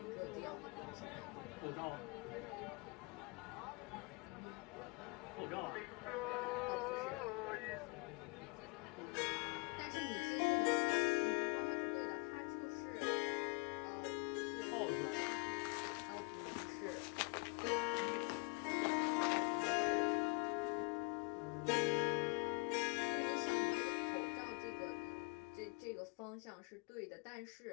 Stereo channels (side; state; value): right; quieter; 30.3 dB